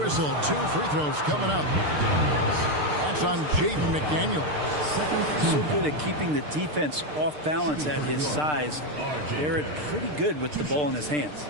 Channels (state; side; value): late; left; 6.7 ms